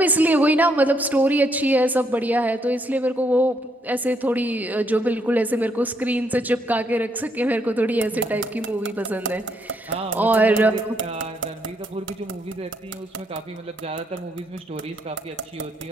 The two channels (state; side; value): normal; both; correlation 0.74